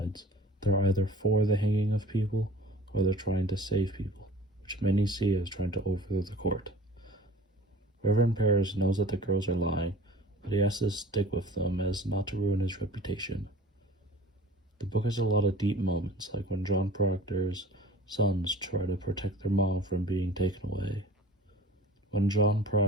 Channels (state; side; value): normal; both; correlation 0.44